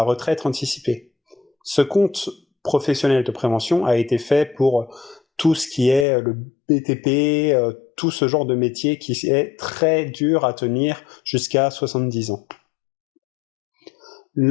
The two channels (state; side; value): drops out; right; at 6.1 s